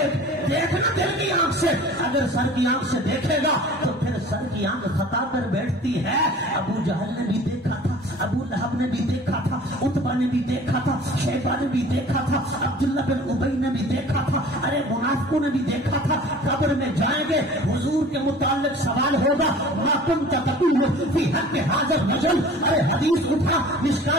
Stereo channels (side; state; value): both; normal; correlation 0.45